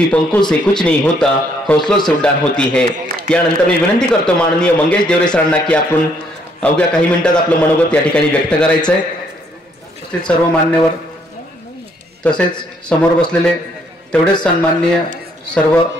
पंखों से कुछ नहीं होता, हौसलों से उड़ान होती है. यानंतर मी विनंती करतो माननीय मंगेश देवरे सरांना की आपण अवघ्या काही मिनिटात आपलं मनोगत या ठिकाणी व्यक्त करायचं आहे. उपस्थित सर्व मान्यवर तसेच समोर बसलेले तेवढेच सन्माननीय सर्व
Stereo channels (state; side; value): normal; both; correlation 0.69